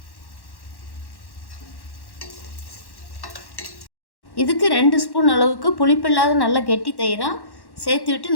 இதுக்கு 2 ஸ்பூன் அளவுக்கு புளிப்பில்லாத நல்ல கெட்டி தயிராக சேர்த்து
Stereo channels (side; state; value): right; late; 1.1 ms